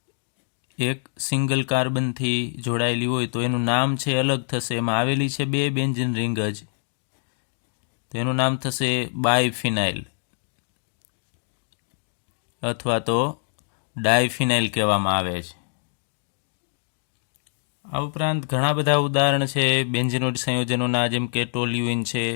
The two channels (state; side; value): silent; right; 58 dB below the other